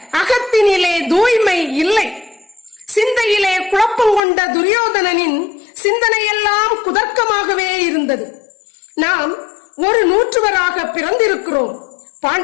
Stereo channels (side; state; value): right; drops out; at 4.2 s